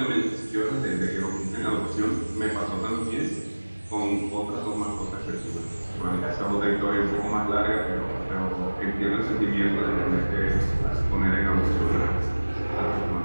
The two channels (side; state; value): both; inverted; correlation -1.00